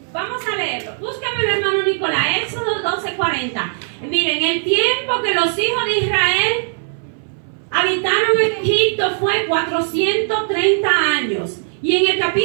Vamos a leerlo. Búscame, hermano Nicolás. Éxodo 12:40. Miren, el tiempo que los hijos de Israel habitaron en Egipto fue 430 años. Y en el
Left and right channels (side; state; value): left; silent; 61 dB below the other